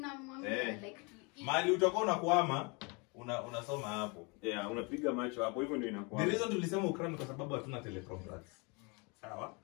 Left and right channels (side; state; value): right; quieter; 30.7 dB